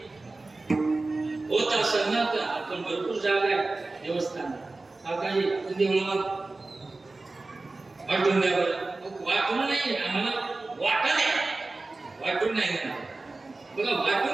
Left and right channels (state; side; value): quieter; left; 3.3 dB